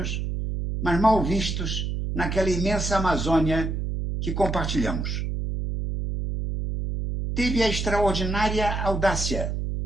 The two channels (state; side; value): noise; right; hum, 2 dB below the sound